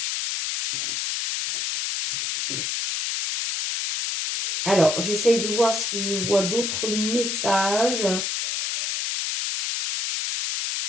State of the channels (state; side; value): noise; left; hiss, 1 dB below the sound